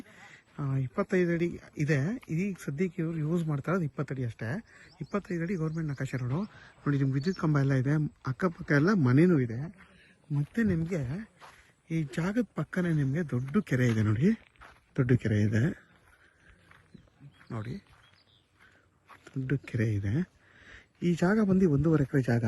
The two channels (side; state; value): both; identical; correlation 1.00